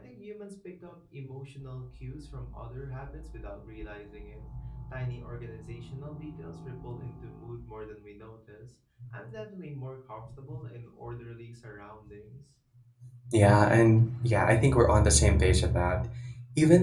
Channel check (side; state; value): both; identical; correlation 1.00